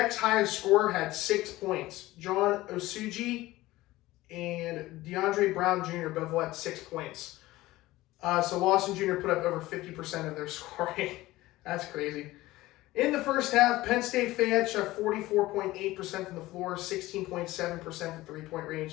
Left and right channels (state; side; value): quieter; right; 17.8 dB